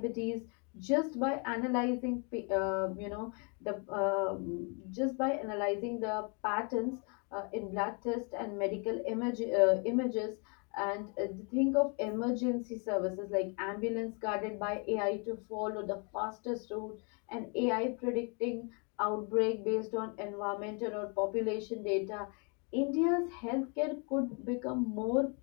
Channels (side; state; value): right; quieter; 35.8 dB